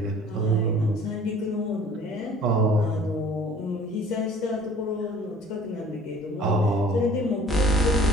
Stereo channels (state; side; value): normal; both; correlation 0.50